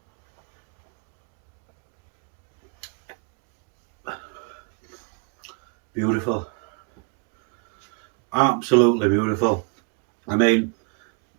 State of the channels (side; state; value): left; quieter; 32.9 dB